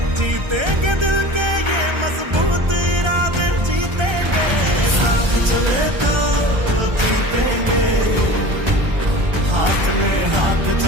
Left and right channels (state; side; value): late; left; 1.3 ms